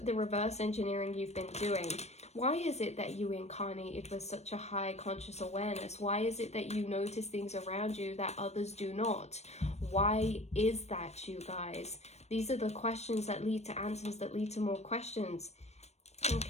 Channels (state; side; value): late; right; 0.31 ms